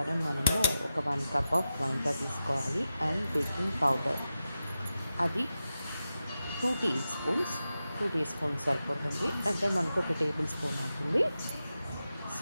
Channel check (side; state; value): both; inverted; correlation -0.92